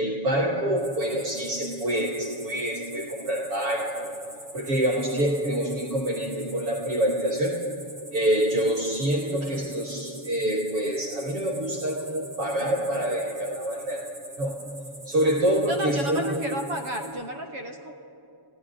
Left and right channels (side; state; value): left; late; 7.1 ms